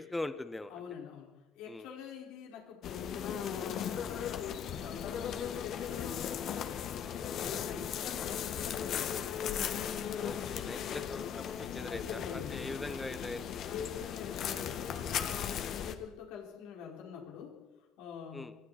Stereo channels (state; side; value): quieter; right; 7.3 dB